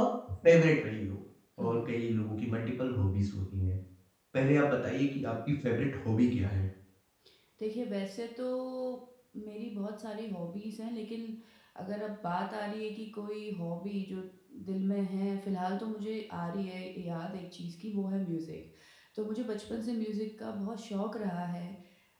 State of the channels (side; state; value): both; identical; correlation 1.00